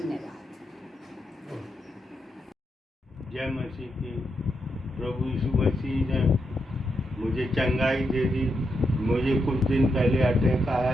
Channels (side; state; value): both; normal; correlation 0.83